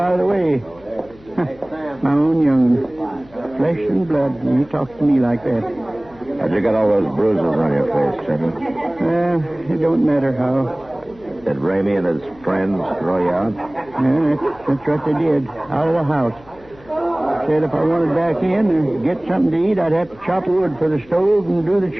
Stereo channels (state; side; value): noise; left; hum, 25 dB below the sound